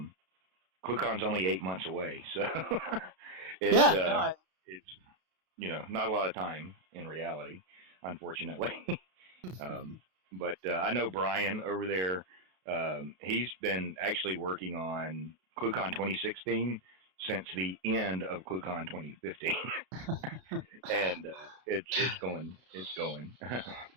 only 8 months away, so it's not a lot of time in reality, unfortunately. But I know Brian over there. He's been actually working on ClueCon 2016 since the end of ClueCon 2015, and it's going.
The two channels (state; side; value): late; left; 32 ms